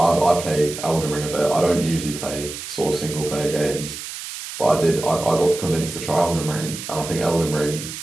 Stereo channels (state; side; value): noise; right; hiss, 9 dB below the sound